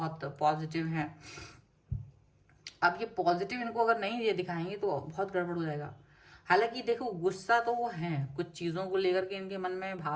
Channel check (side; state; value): both; identical; correlation 1.00